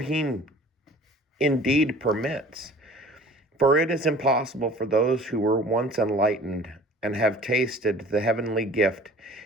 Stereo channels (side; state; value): both; normal; correlation 0.47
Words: indeed permits. For it is impossible for those who were once enlightened and have tasted the heavenly gift